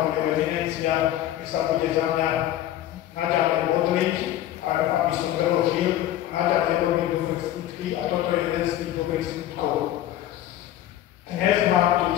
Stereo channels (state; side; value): quieter; right; 12.9 dB